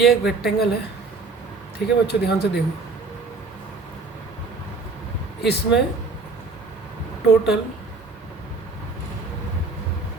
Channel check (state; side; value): quieter; left; 3.9 dB